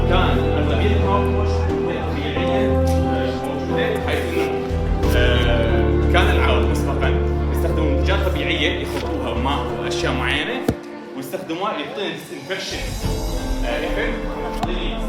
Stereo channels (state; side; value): identical; both; correlation 1.00